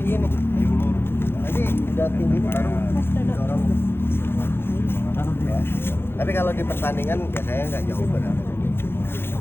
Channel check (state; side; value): late; right; 0.11 ms